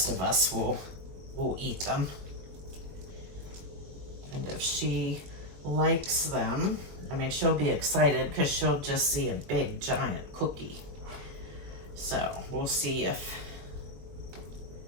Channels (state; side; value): late; left; 21 ms